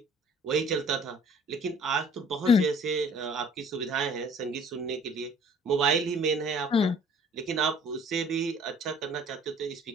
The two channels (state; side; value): normal; both; correlation 0.53